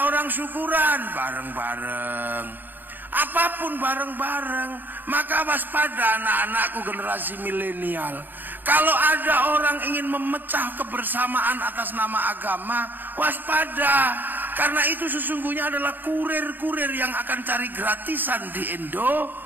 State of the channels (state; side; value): late; left; 0.090 ms